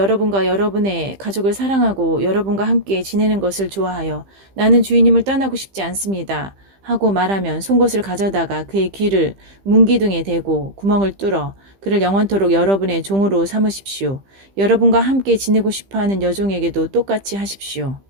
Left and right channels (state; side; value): late; left; 15 ms